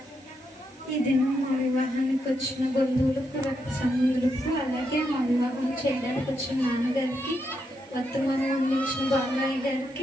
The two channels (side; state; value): both; normal; correlation 0.81